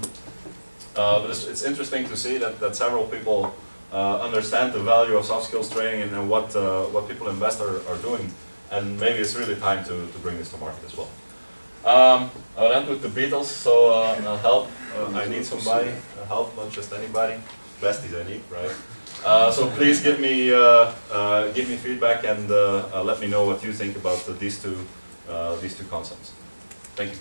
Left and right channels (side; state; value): both; inverted; correlation -1.00